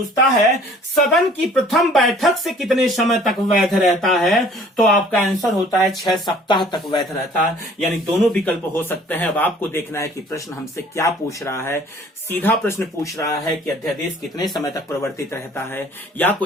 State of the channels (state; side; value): normal; both; correlation 0.53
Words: है सदन की प्रथम बैठक से कितने समय तक वैध रहता है, तो आपका आंसर होता है 6 सप्ताह तक वैध रहता है। यानी दोनों विकल्प हो सकते हैं। अब आपको देखना है कि प्रश्न हमसे क्या पूछ रहा है। सीधा प्रश्न पूछ रहा है कि अध्यादेश कितने समय तक परिवर्तित रहता है, या